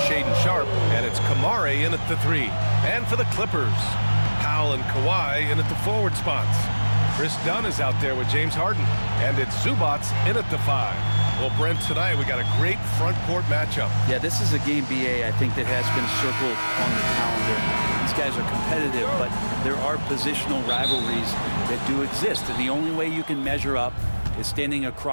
Shaedon Sharpe, and it's Kamari in at the 3. And for the Clippers, Powell and Kawhi in at the forward spots. Chris Dunn is out there with James Harden, and it's Zubac in at the 5. Well, Brent, tonight we got a great front court matchup. Yeah, this is a game, BA, I think that has been circled on the calendar. These guys are competitive, but there are positional rivalries that do exist, and the only way you can measure up is standing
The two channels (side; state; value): both; inverted; correlation -1.00